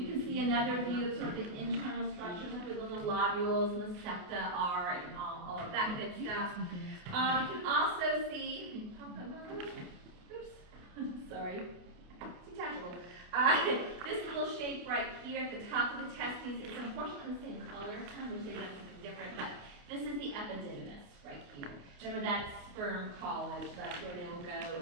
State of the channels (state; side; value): late; left; 28 ms